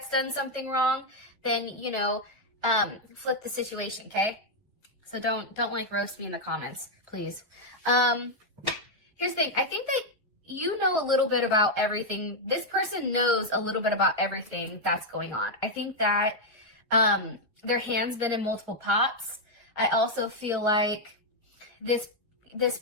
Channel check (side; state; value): both; normal; correlation -0.01